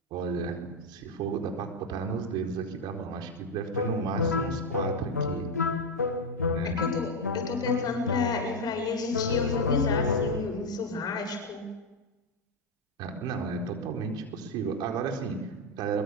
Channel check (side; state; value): both; normal; correlation 0.05